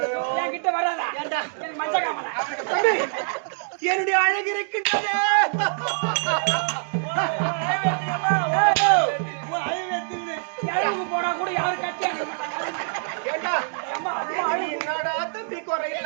என்கிட்ட வராதா மஞ்ச காமல என்னுடைய அழகு இருக்கின்றது போனா கூட யாரும் கட்டி என்னடா தம்பி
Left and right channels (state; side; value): silent; left; digital silence